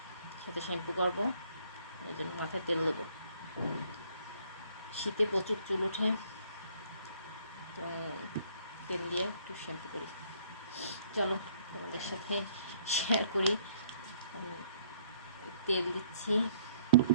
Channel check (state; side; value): inverted; both; correlation -0.62